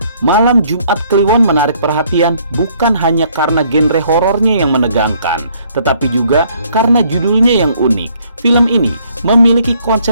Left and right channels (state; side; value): inverted; both; correlation -0.65